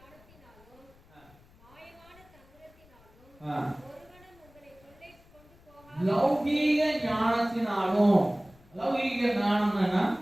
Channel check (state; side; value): noise; left; rumble, 27 dB below the sound